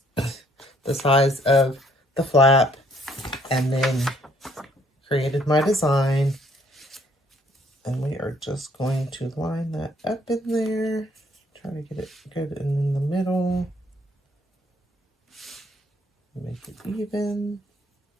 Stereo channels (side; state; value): both; normal; correlation 0.64